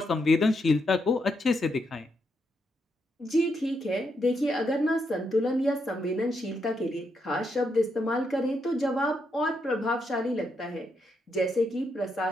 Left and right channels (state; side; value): normal; both; correlation 0.80